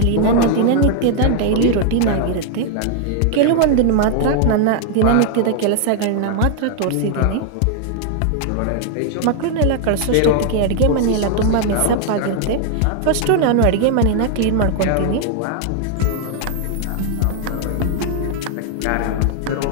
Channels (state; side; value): different; both; correlation 0.00